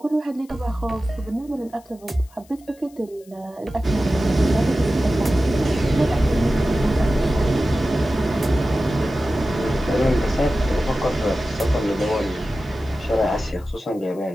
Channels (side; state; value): left; noise; hiss, 28 dB below the sound